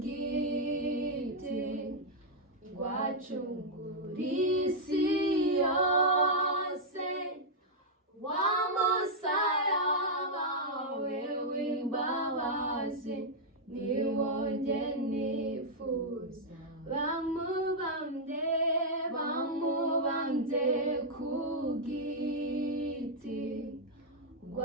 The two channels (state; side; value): normal; both; correlation -0.04